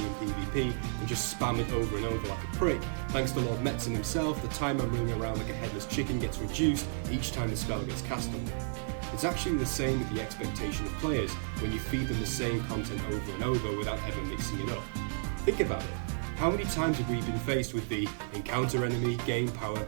in PvP and just spam it over and over like a prick. Thanks to Lord Metzen himself, the time I'm running around like a headless chicken gets reduced each time the spell gets cast on me. It's actually the same with the expectation of players when you feed them the same content over and over without ever mixing it up. Think about it. How many times have we been faced with the encounter enemy, gain power,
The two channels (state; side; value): silent; left; digital silence